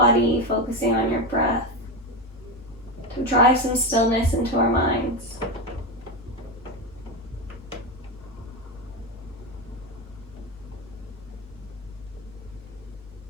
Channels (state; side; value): normal; both; correlation 0.15